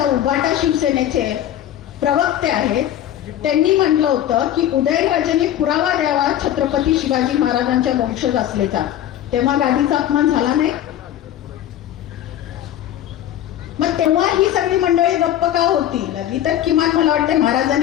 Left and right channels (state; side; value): quieter; right; 11.6 dB